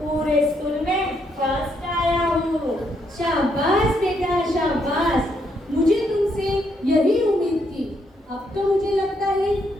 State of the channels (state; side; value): normal; both; correlation 0.75